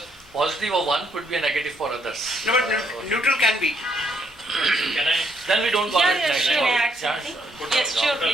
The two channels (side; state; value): both; normal; correlation 0.72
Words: positive of one could be a negative for others. No, but neutral can be. Can I? Then we don't call it negative. Yes, sure,